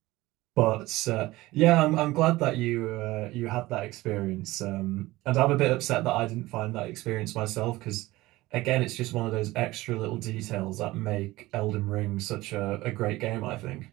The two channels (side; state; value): left; quieter; 18.7 dB